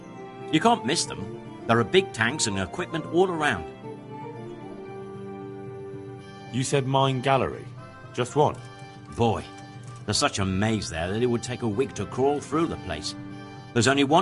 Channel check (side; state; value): both; identical; correlation 1.00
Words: You can't miss them. There are big tanks and equipment all around. You said mine gallery. Just one? Boy, there's such a maze there that it would take a week to crawl through the place. There's only